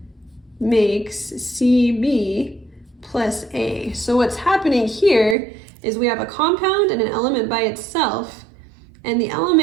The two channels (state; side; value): drops out; left; at 5.4 s